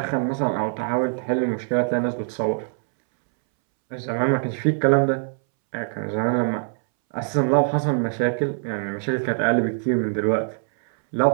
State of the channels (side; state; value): left; silent; 63 dB below the other